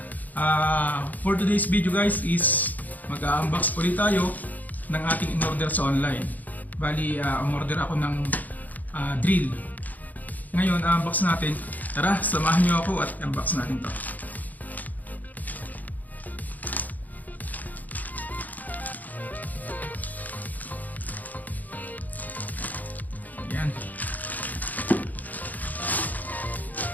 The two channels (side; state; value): right; late; 0.081 ms